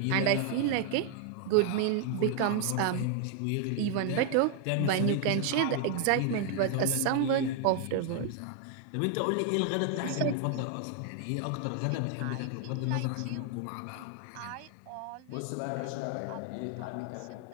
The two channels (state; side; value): different; both; correlation 0.00